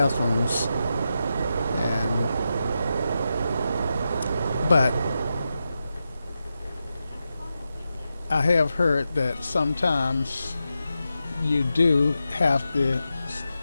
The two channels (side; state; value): both; inverted; correlation -0.89